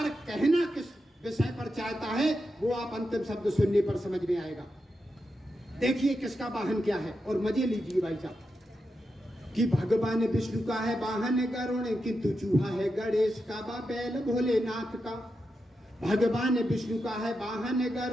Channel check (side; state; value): both; normal; correlation 0.87